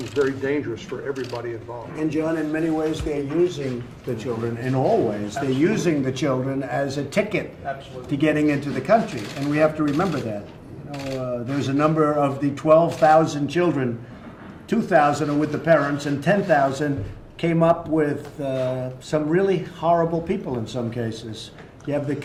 very dangerous for everybody involved. And John, in many ways, they're using the children, in all ways, they're using the children as a ticket to getting into the country. And we have to remember that. You know, there's a number of the 12,000 children, 2,000 are with the parents and 10,000 came up with some really horrible people in some cases. You have the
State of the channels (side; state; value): both; identical; correlation 1.00